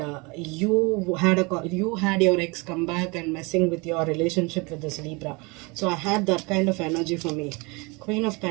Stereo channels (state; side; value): quieter; left; 27.4 dB